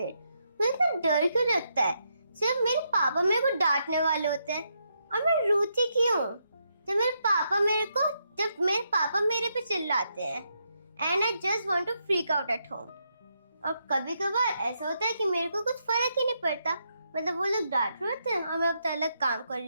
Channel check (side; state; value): both; inverted; correlation -0.80